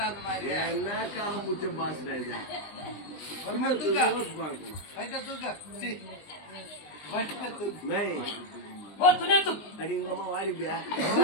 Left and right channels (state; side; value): late; right; 20 ms